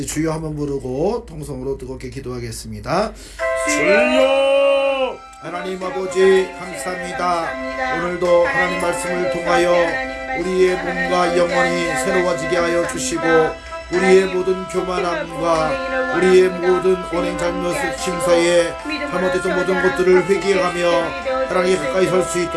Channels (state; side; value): identical; both; correlation 1.00